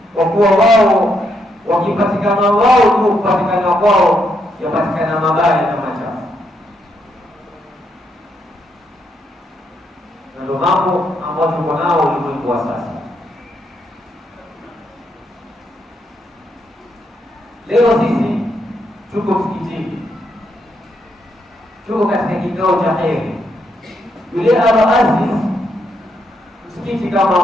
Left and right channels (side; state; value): both; normal; correlation 0.78